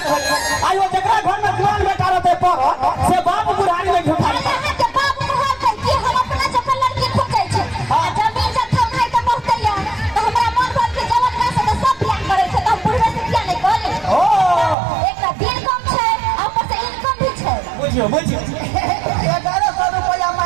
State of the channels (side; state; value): left; drops out; at 14.8 s